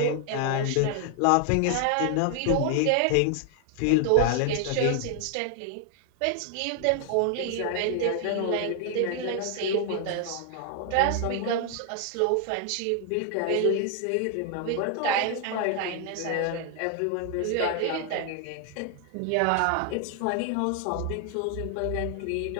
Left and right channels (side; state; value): both; different; correlation 0.00